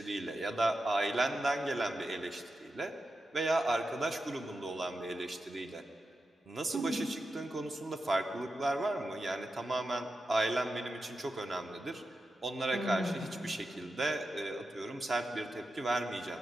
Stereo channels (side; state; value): both; normal; correlation 0.89